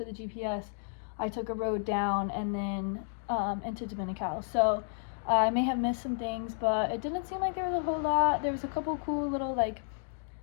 the GPS, I took a road down and then into Dominical. So I may have missed some things, but it didn't seem like there was a whole lot. There was a couple cool little like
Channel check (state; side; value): silent; right; digital silence